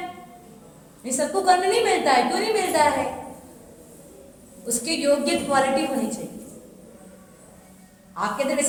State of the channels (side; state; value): both; identical; correlation 1.00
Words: ये सबको करने नहीं मिलता है। क्यों नहीं मिलता है? उसकी योग्य क्वालिटी होनी चाहिए। आपके अंदर